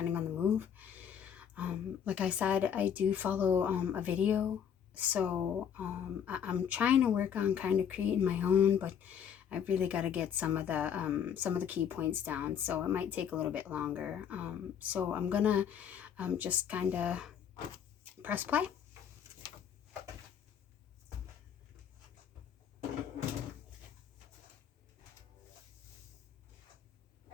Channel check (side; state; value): right; quieter; 8.3 dB